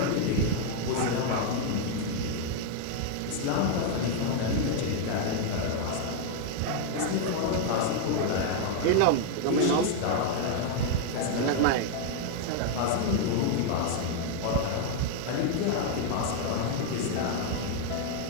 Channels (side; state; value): both; different; correlation 0.00